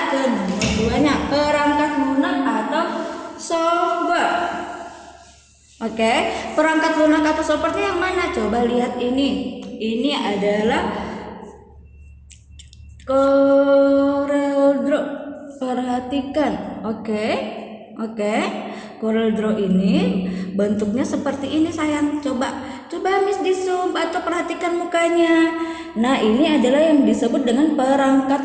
ke nomor 2-nya, perangkat lunak atau software. Oke, perangkat lunak atau software yang mana? Coba lihat ini. Ini adalah CorelDRAW. Perhatikan. Oke. CorelDRAW ini bentuknya seperti ini sayang. Coba Miss di zoom atau perhatikan mukanya. Nah, ini adalah yang disebut dengan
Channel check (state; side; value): identical; both; correlation 1.00